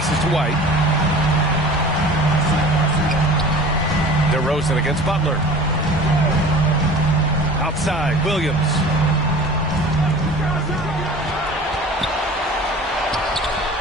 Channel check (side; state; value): both; normal; correlation 0.42